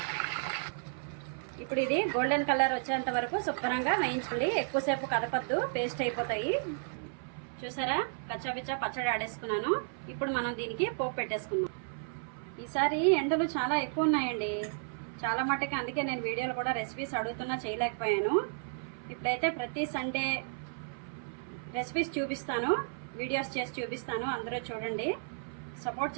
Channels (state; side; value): silent; left; 56 dB below the other